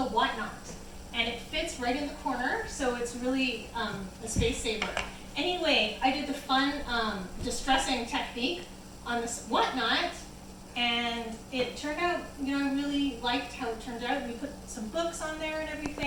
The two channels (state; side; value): identical; both; correlation 1.00